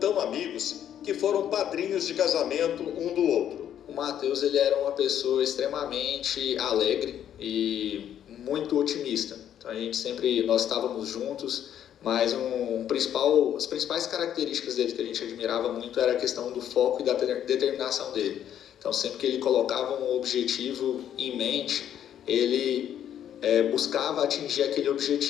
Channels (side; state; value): right; quieter; 10.1 dB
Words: amigos que foram padrinhos de casamento um do outro. O Matheus, ele era uma pessoa extremamente alegre e muito otimista. Então nós estávamos juntos, mas as principais características dele que a gente admirava muito era a questão do foco e da determinação dele. Então sempre que ele colocava um objetivo em mente, ele buscava atingir aquele